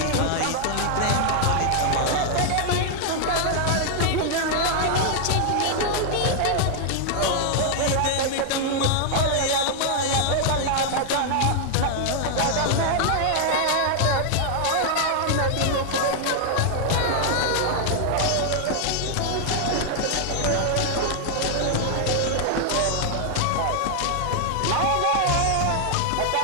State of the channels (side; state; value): both; different; correlation 0.00